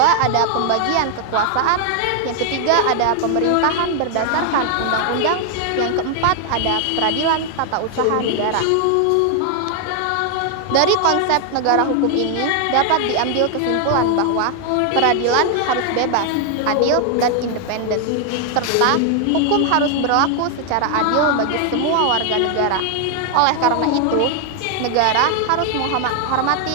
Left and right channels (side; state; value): both; different; correlation 0.00